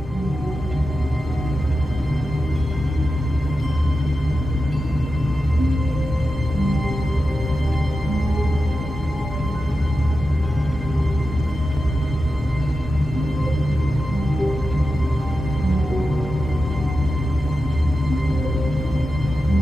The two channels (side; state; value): both; normal; correlation 0.91